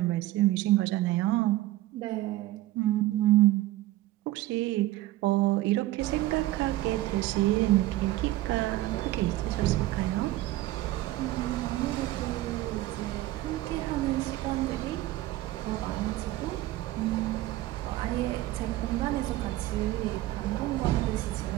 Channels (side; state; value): left; quieter; 16.4 dB